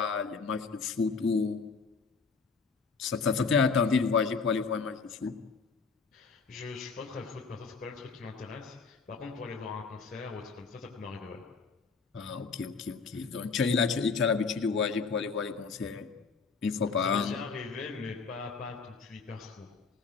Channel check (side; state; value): right; quieter; 5.0 dB